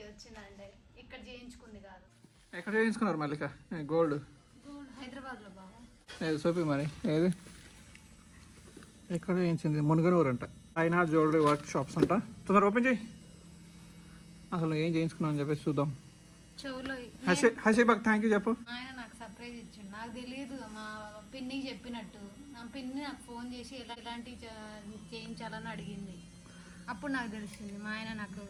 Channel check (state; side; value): identical; both; correlation 1.00